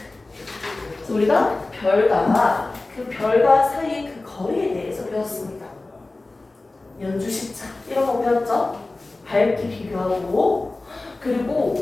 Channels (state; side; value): quieter; right; 3.2 dB